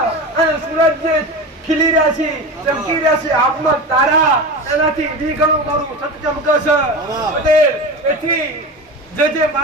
અને સૂરજ જે ખીલી રહ્યા છે, ચમકી રહ્યા છે, આબમાં તારા એનાથી દ્વિગણું મારું સત ચમકે છે. પટેલ, એથી જે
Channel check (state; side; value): normal; both; correlation 0.27